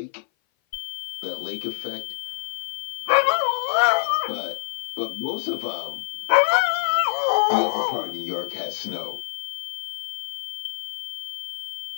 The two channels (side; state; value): right; silent; 56 dB below the other